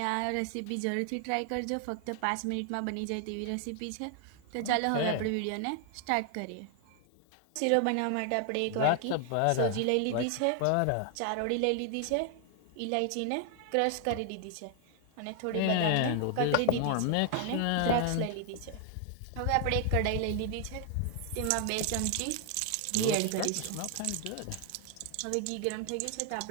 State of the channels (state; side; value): different; both; correlation 0.00